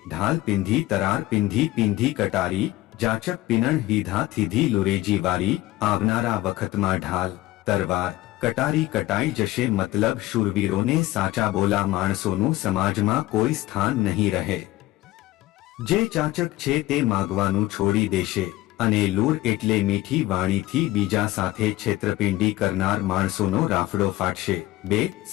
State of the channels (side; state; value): right; quieter; 17.0 dB